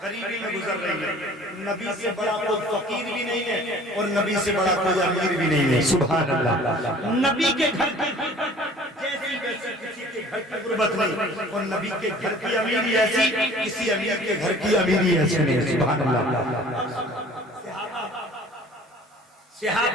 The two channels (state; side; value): normal; both; correlation 0.49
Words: غریبی میں گزر رہی ہے. نبی سے بڑا کوئی فقیر بھی نہیں ہے اور نبی سے بڑا کوئی امیر بھی نہیں ہے. سبحان اللہ. نبی کے گھر کی جیسی ویسی کسی کے گھر کی غربت نہیں، اور نبی کے گھر کی امیری ایسی کسی امیر کے گھر کی امیری ایسی نہیں. سبحان اللہ.